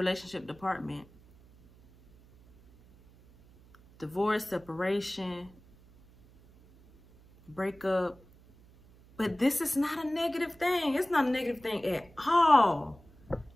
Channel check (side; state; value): right; noise; hum, 26 dB below the sound